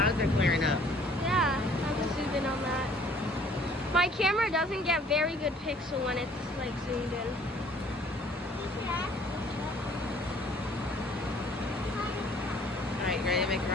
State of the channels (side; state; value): both; normal; correlation 0.57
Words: are clearing up. Yeah, I'm just zooming on that. My camera doesn't get very good pixel when it's like zoomed in. Alright, you ready to make a